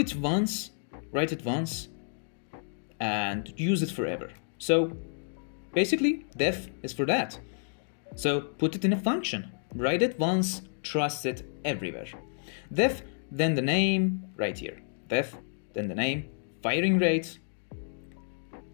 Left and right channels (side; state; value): right; silent; digital silence